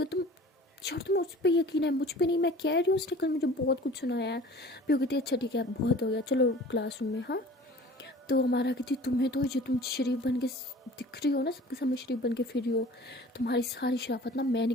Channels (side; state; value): both; normal; correlation 0.45